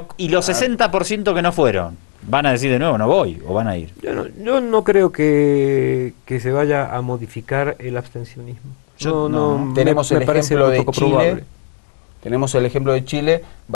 60% que no fueron, ¿van a decir de nuevo no voy o van a ir? Yo no creo que se vaya a modificar el abstencionismo. Tenemos el ejemplo de poco Chile. probable. Tenemos el ejemplo de Chile.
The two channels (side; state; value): right; silent; 58 dB below the other